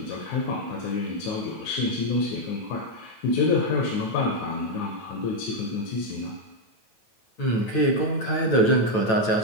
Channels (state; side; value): late; right; 9.1 ms